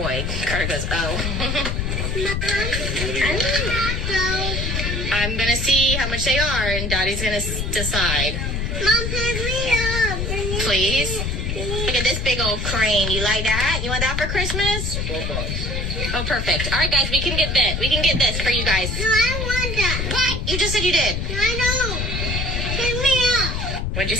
Carter goes, oh. I'm gonna see how much they are, and Daddy's gonna decide. Mom, pick me up. Please? Look at this big old crane. You like that? You want that for Christmas? Oh, perfect. All right, guys, we can get this. We can get this for you guys. No, I want that. What? You just said you did. No, I know. Pick me up. What'd you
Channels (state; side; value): noise; left; rumble, 2 dB below the sound